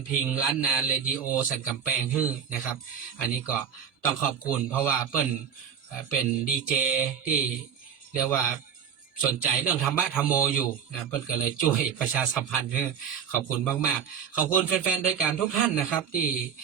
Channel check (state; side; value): quieter; left; 7.7 dB